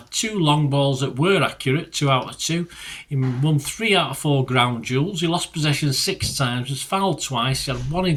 2 long balls that were accurate, 2 out of 2. He won 3 out of 4 ground duels. He lost possession 6 times, was fouled twice. He had 1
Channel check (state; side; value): identical; both; correlation 1.00